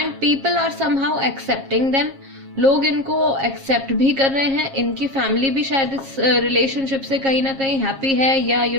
people are somehow accepting them, लोग इनको एक्सेप्ट भी कर रहे हैं। इनकी फैमिली भी शायद इस रिलेशनशिप से कहीं ना कहीं हैप्पी है, या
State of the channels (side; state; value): left; late; 7.4 ms